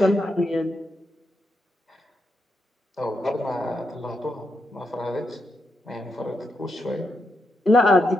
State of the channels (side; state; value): both; normal; correlation 0.83